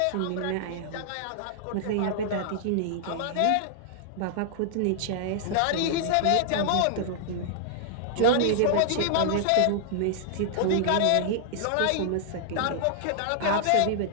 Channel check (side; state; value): both; different; correlation -0.01